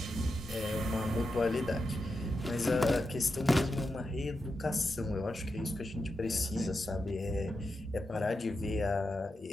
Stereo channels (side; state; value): both; normal; correlation 0.87